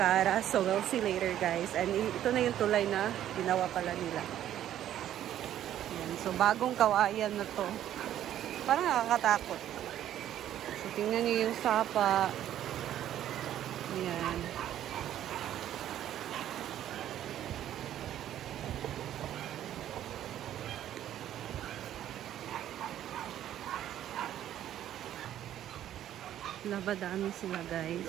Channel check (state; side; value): quieter; left; 11.6 dB